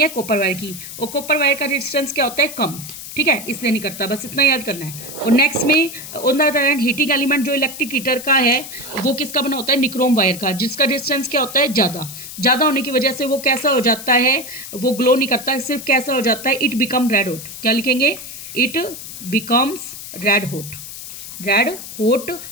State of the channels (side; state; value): left; noise; hiss, 11 dB below the sound